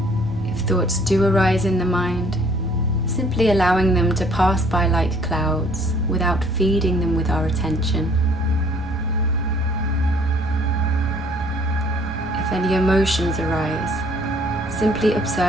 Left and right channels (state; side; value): normal; both; correlation 0.59